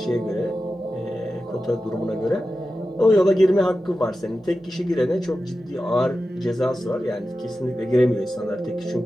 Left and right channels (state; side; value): normal; both; correlation 0.93